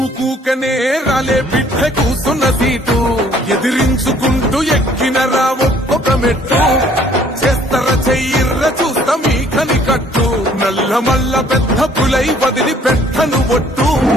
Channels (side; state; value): both; normal; correlation 0.59